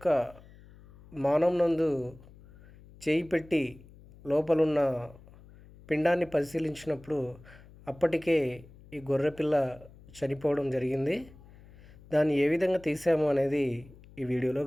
మానం నందు చేయి పెట్టి లోపలున్న పిండాన్ని పరిశీలించినప్పుడు అప్పటికే ఈ గొర్రె పిల్ల చనిపోవడం జరిగింది. దాన్ని ఏ విధంగా తీసాము అనేది ఈ వీడియోలో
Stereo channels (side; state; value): left; noise; hum, 22 dB below the sound